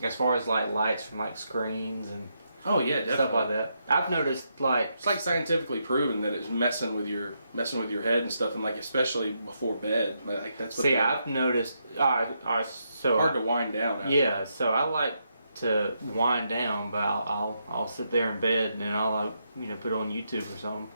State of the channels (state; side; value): inverted; both; correlation -0.80